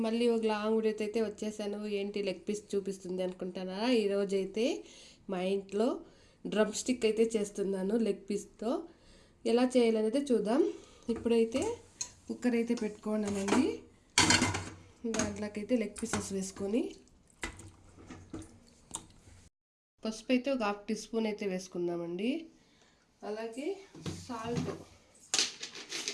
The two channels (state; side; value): identical; both; correlation 1.00